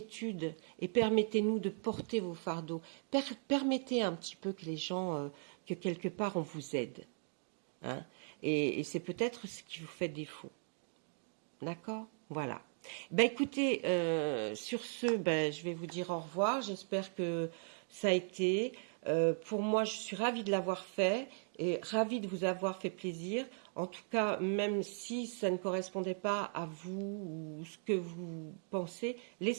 et permettez-nous de porter vos fardeaux. Permettez un petit peu que les gens, que quelque part on vous aide. Hein, et c'est peut-être ce qui vous fait défaut. D'accord? Voilà. Ben écoutez, sur ce, ben, je vais vous dire au revoir. J'espère que ça a été. Pour moi, je suis ravie de l'avoir fait et ravie de vous avoir fait plaisir. En tout cas, même si ça ne correspondait pas à vous ou ce que vous pensez,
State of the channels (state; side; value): silent; left; 52 dB below the other